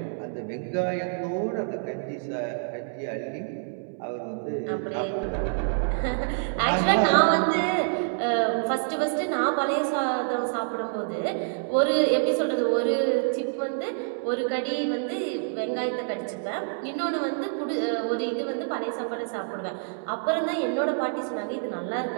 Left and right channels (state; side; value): silent; left; digital silence